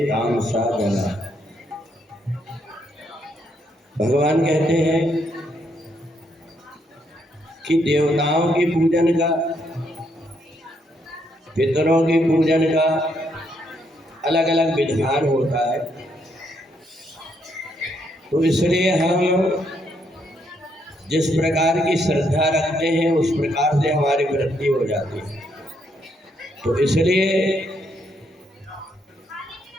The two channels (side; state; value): both; normal; correlation 0.74